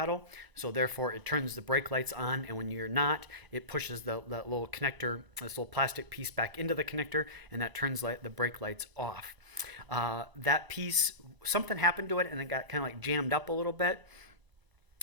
So therefore, it turns the brake lights on, and when you're not, it pushes that little connector, this little plastic piece, back into the connector, and that turns the brake lights off. That piece, something happened to it, and it got kind of like jammed up a little bit.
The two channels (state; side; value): late; left; 1.0 ms